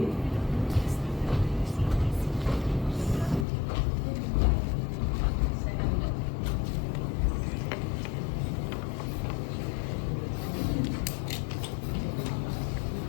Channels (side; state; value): right; drops out; at 3.5 s